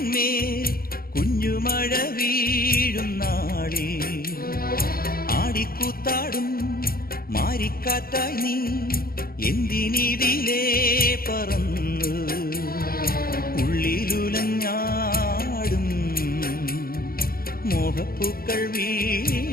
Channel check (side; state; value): right; late; 0.43 ms